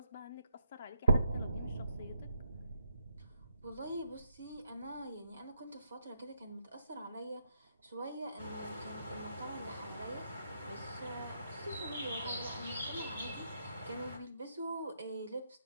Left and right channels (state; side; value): inverted; both; correlation -0.77